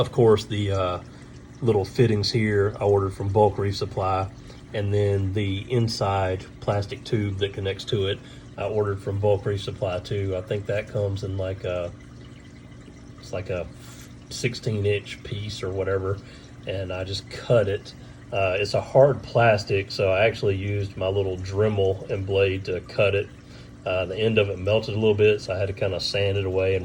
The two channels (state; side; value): identical; both; correlation 1.00